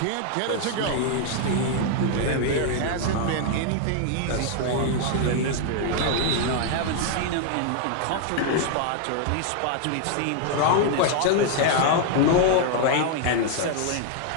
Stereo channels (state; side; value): different; both; correlation 0.00